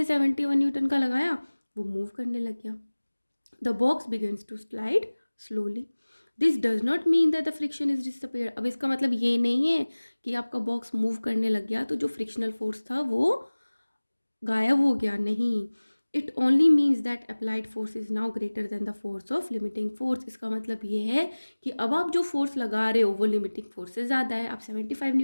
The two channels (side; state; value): both; inverted; correlation -1.00